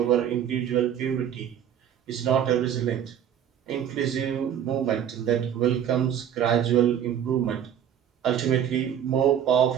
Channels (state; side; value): quieter; left; 9.5 dB